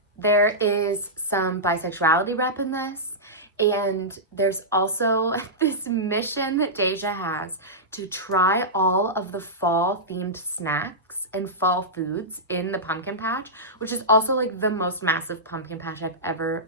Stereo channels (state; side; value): normal; both; correlation -0.13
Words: There is some bisexuality rep in this, and there's also this mission that Deja has to try all of the fall themed snacks and fall foods in the pumpkin patch, which is also like the most massive pumpkin patch I've ever